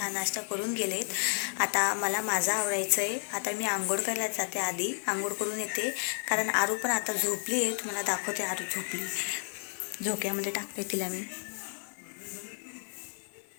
नाश्ता करून गेलेत. आता मला माझं आवडायचं आहे. आता मी आंघोळ करायला जाते, आधी आंघोळ करून येते, कारण आरू पण आता झोपली आहे. तुम्हाला दाखवते, आरू झोपली, झोक्यामध्ये टाकते तिला मी.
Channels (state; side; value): silent; right; 57 dB below the other